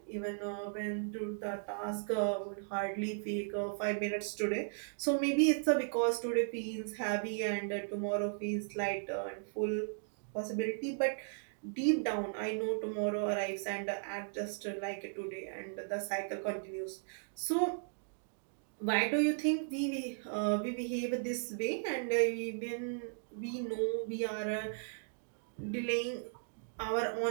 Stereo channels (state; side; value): silent; left; digital silence